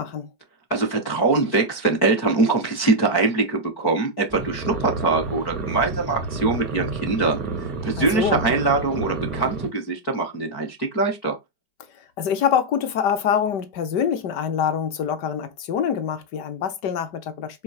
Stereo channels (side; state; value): right; late; 5.2 ms